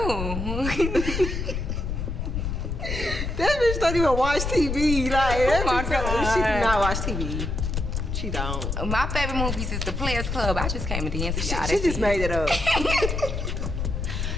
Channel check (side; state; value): left; noise; rumble, 3 dB below the sound